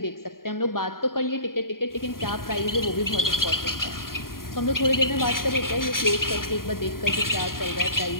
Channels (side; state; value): right; late; 0.91 ms